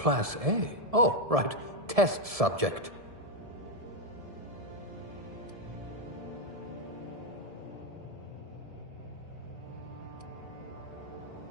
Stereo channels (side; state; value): left; late; 1.7 ms